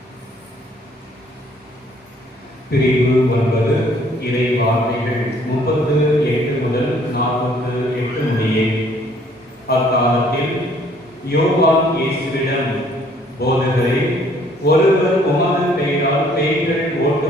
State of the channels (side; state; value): both; normal; correlation 0.61